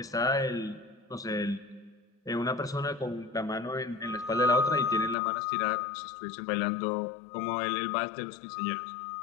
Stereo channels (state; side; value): drops out; right; at 5.2 s